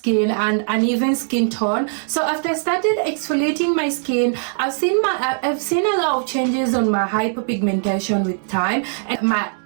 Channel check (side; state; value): left; silent; digital silence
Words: and uneven skin tone. So after I started exfoliating my skin, I've seen a lot of changes on my hyperpigmentation with time, and my